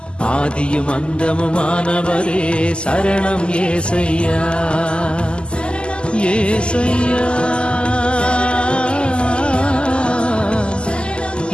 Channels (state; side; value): late; right; 0.050 ms